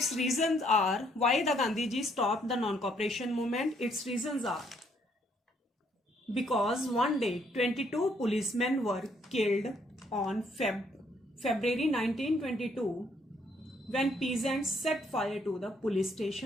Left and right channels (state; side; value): normal; both; correlation 0.69